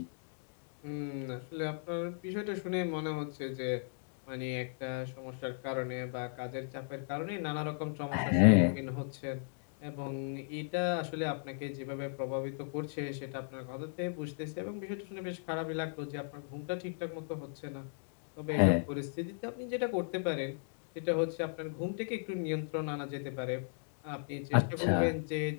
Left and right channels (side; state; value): right; silent; digital silence